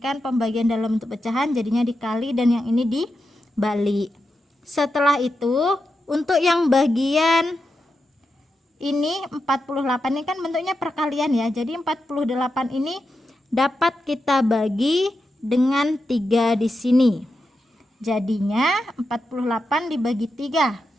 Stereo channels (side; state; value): both; normal; correlation 0.88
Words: pembagian dalam bentuk pecahan, jadinya dikali dan yang ini dibalik. Setelah itu, untuk yang bagian ini 48 ini kan bentuknya perkalian ya. Jadi 48 ini dapat kita bagi dengan 3 di sini. Jadinya 48 dibagi 3.